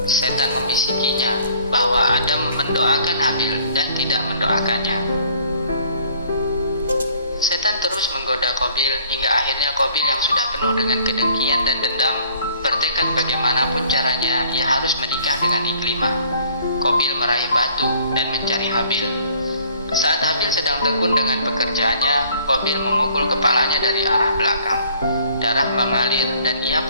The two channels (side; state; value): both; inverted; correlation -0.56